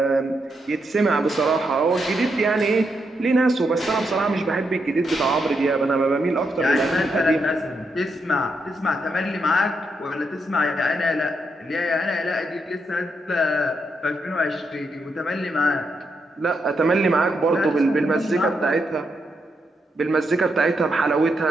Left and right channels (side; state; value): both; normal; correlation 0.81